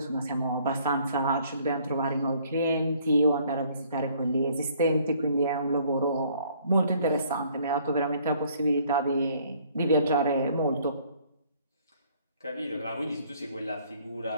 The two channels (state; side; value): inverted; both; correlation -0.61